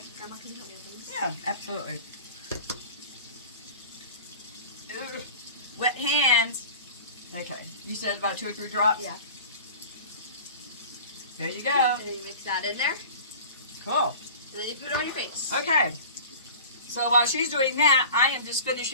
Grandma, can you help me with this? Yeah, absolutely. Ugh. Wet hands. Okay. You said about 2 or 3 drops? Yeah. There you go. And then you mix that in there. Cool. And then you put it on your face. Okay. So while she's doing that, I am just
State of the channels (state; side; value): inverted; both; correlation -0.39